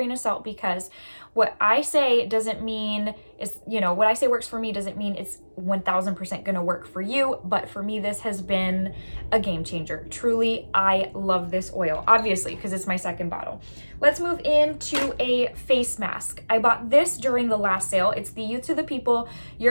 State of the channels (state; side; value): inverted; both; correlation -1.00